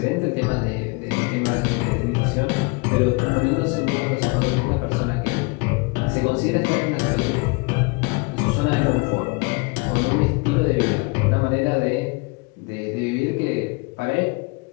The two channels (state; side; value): quieter; right; 29.1 dB